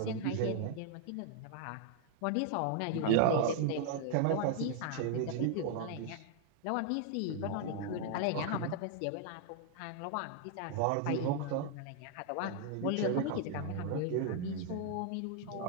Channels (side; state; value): both; different; correlation 0.00